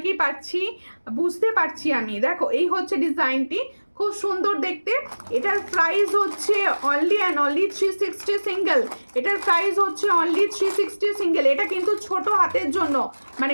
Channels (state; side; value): inverted; both; correlation -1.00